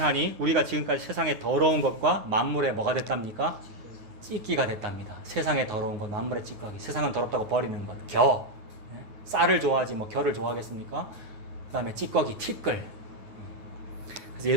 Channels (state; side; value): late; left; 9.6 ms